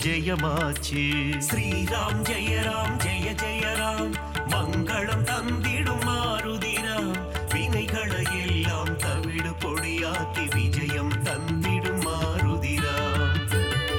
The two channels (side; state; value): both; identical; correlation 1.00